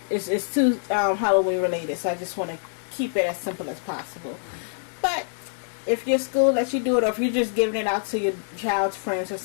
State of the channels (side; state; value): right; silent; digital silence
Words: It's too Halloween related, so I just want to keep it as simple as possible. But if your school lets you do it, or if you're just giving it out to your child's friends or